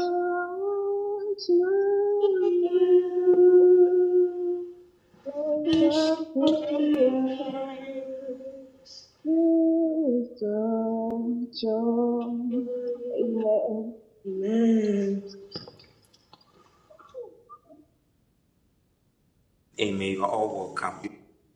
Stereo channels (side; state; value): both; identical; correlation 1.00